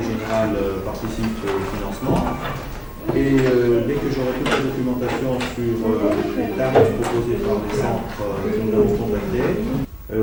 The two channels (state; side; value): identical; both; correlation 1.00